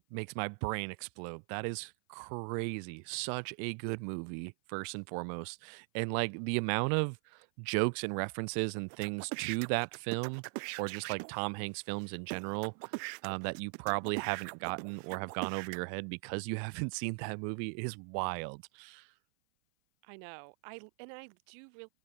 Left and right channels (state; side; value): silent; left; 52 dB below the other